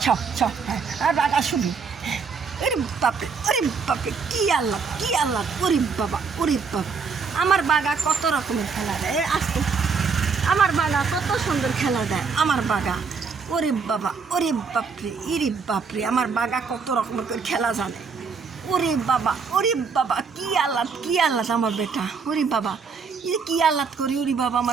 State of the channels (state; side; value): quieter; left; 5.3 dB